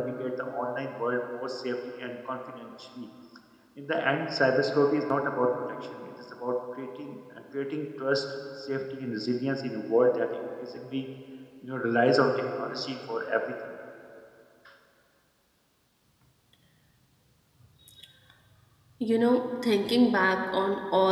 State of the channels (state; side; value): identical; both; correlation 1.00